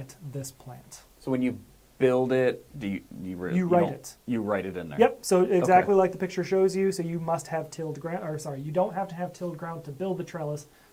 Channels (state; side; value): identical; both; correlation 1.00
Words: this plant. So when you build it, you write don't- it. You write it in there. Yep, so exactly Okay. like the picture shows you, so you must have tilled ground, or sorry, you don't have to have tilled ground to build the trellis.